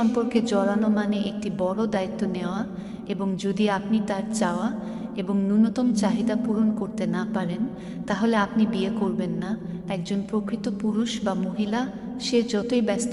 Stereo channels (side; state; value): both; identical; correlation 1.00